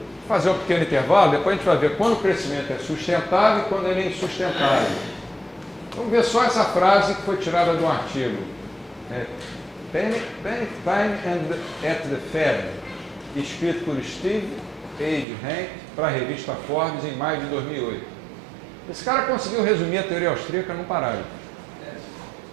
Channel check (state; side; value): drops out; left; at 15.2 s